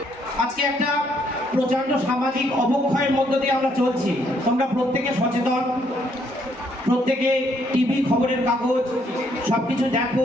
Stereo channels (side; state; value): both; normal; correlation 0.70